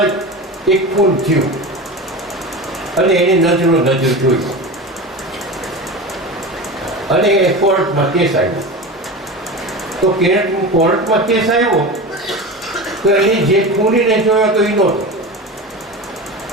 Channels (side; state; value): both; normal; correlation 0.28